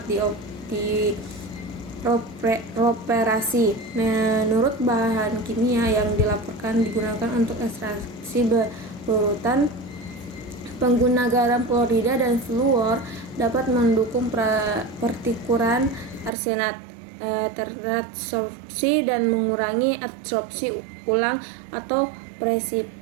dioperasi. Menurut bahan kimia yang dilaporkan digunakan untuk ekstraksi berurutan, pengguna garam klorida dan fluor dapat mendukung pertukaran arsenat terabsorpsi dan mengurangi absorpsi ulang atau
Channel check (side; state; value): left; drops out; at 16.3 s